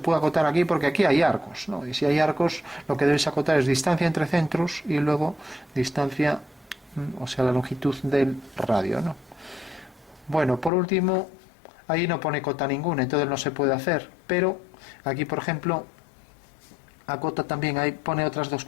puede acotar aquí porque aquí hay arcos, ¿no? Y si hay arcos, lo que debes acotar es distancia entre centros y luego distancia, o sea, la longitud del radio, ¿no? Bueno, por último, ahí no pone cota ninguna, entonces no se puede hacer, pero aquí, por ejemplo, acota también, ahí pone otras dos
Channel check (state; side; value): drops out; right; at 10.7 s